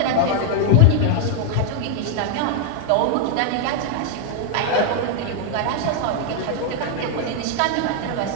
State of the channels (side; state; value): both; different; correlation 0.00